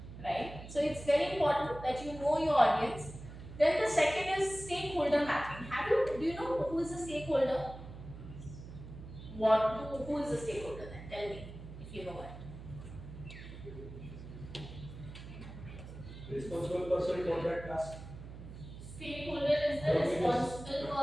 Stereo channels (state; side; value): noise; right; hum, 13 dB below the sound